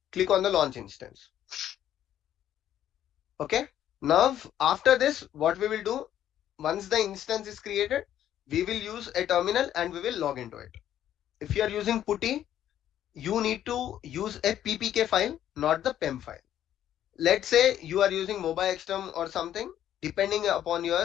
Click on the launch instance. Okay. Now, after this, what we will do, once the instance is created, we will use a terminal and we will log into it. If you are using putty, you need to use a ppk file, not the pem file. Let's say you are using mobile xterm or something, depending upon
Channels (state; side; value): quieter; right; 11.2 dB